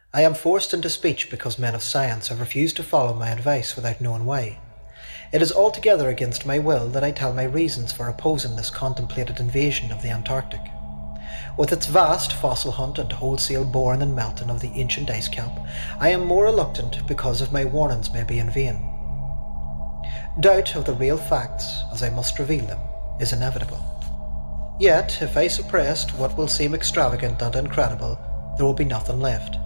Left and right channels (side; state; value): both; inverted; correlation -1.00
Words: I am forced into speech because men of science have refused to follow my advice without knowing why. It is altogether against my will that I tell my reasons for opposing this contemplated invasion of the Antarctic. With its vast fossil hunt and wholesale boring and melting of the ancient ice cap, I am more reluctant because of my warnings may be in vain. Doubt of the real facts, as I must reveal them, is inevitable. Yet, if I suppressed what will seem extravagant and incredible, there will be nothing left.